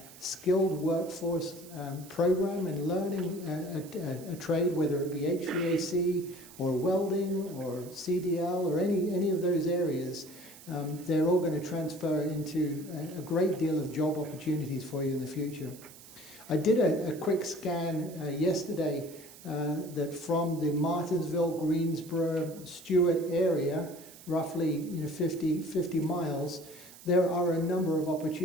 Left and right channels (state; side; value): noise; right; hiss, 19 dB below the sound